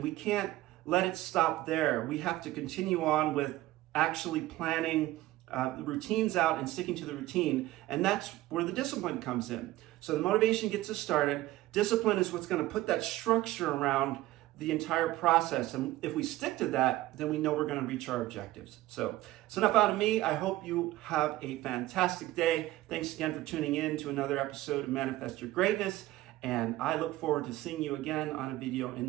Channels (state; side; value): quieter; left; 16.4 dB